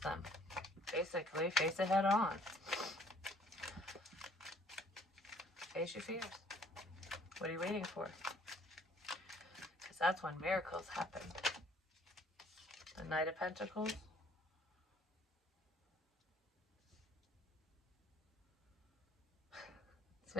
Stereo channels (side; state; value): both; normal; correlation 0.59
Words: them. Basically, face it head on. Face your fears. What are you waiting for? That's when miracles happen. The Knight of Pentacles. It's